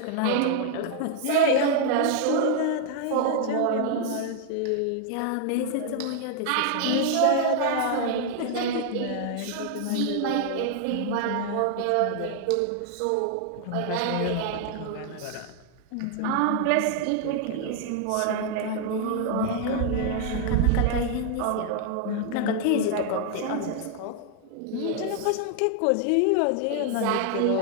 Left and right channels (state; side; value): different; both; correlation 0.00